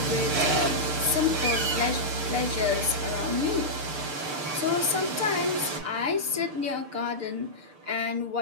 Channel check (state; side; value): late; left; 6.7 ms